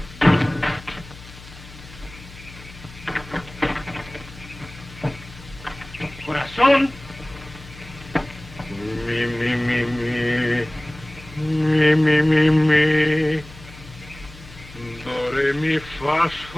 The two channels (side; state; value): left; noise; hum, 18 dB below the sound